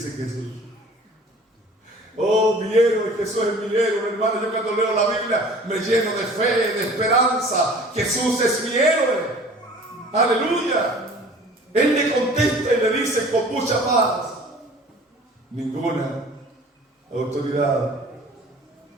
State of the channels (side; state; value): both; normal; correlation 0.47